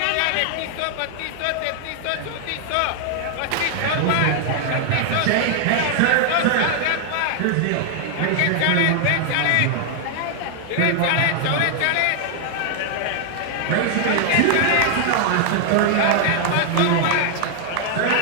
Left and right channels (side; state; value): both; different; correlation 0.00